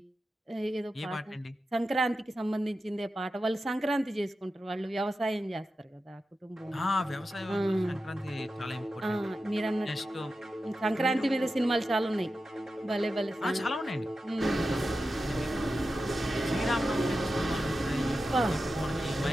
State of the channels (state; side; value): normal; both; correlation 0.91